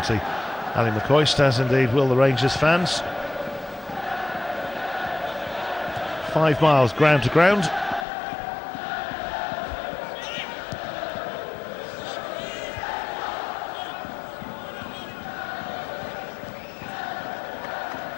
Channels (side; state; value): right; drops out; at 8.1 s